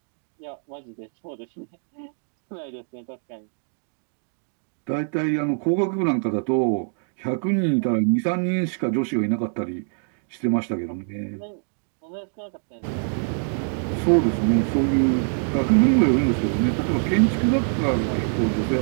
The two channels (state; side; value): silent; left; 62 dB below the other